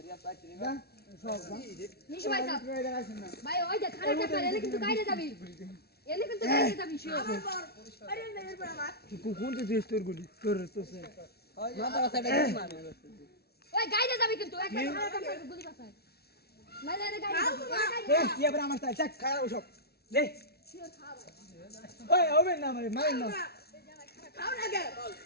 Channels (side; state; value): right; late; 0.46 ms